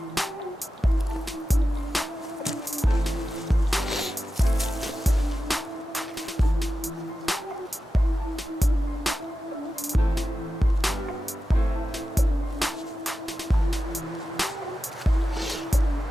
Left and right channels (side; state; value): both; normal; correlation 0.91